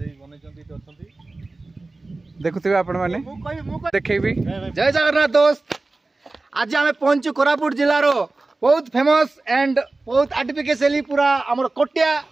देखुथिबे आपण माने देखेबी। जय जगन्नाथ दोस्त, आज आम पहुंचु कोरापुट जिलार बहुत फेमस एंड बहुत आर्टिफिशियली पूरा आमर कोटिया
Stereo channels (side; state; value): left; quieter; 3.3 dB